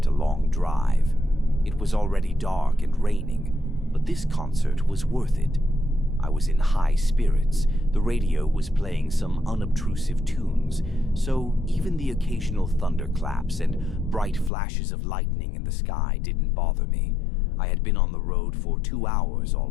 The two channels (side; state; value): right; drops out; at 14.5 s